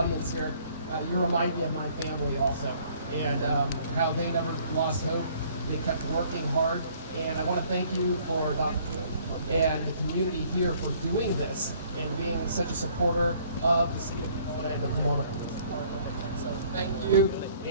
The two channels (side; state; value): both; inverted; correlation -0.59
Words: here, you remind me of my family also, and how they never lost hope. They kept working hard, and I want to thank you for Dr. and the community here for doing this and being such a supporter of the city of Pomona and the Pomona Police Department. So thank you,